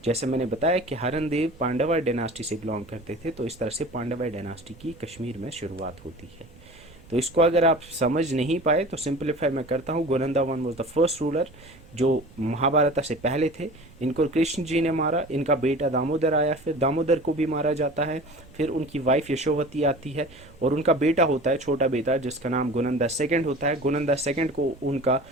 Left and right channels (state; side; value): noise; right; rumble, 23 dB below the sound